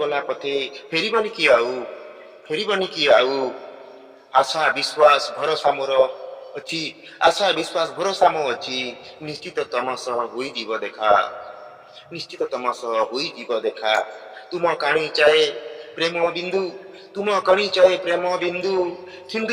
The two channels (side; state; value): both; identical; correlation 1.00